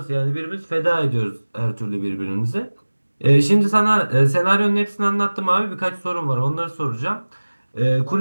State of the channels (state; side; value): inverted; both; correlation -1.00